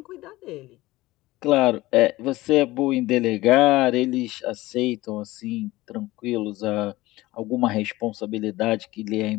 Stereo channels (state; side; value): quieter; right; 18.7 dB